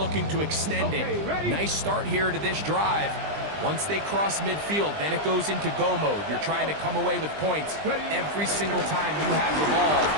to extend it. Nice start here to this drive. Once they cross midfield, then it goes into go mode. You're trying to come away with points every single time you have the ball.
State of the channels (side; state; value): left; late; 20 ms